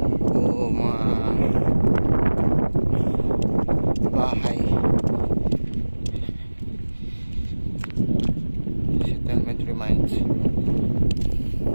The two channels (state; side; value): inverted; both; correlation -1.00